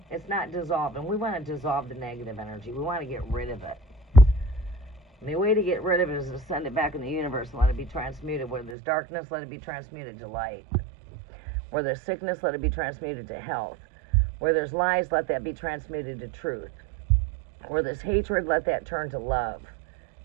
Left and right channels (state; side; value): drops out; left; at 8.8 s